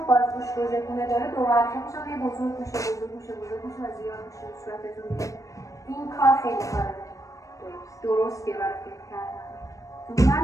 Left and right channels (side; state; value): right; late; 0.16 ms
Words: بازگوش رژگونه داره دور اطرافش هم یه بزرگ میشه و زیاد میشه صورتتون میشه. این کار خیلی کاره درستیه برای فید کردن.